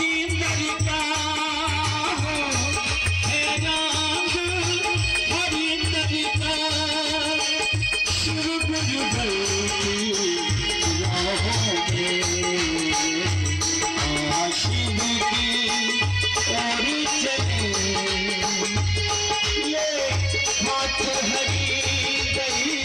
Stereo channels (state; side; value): identical; both; correlation 1.00